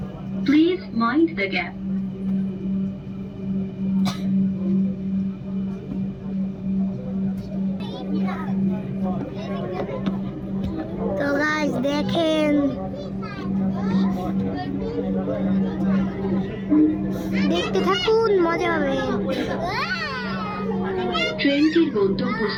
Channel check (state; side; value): identical; both; correlation 1.00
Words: Please mind the gap. তো গাইস দেখেন, দেখতে থাকুন, মজা হবে। ট্রেনটির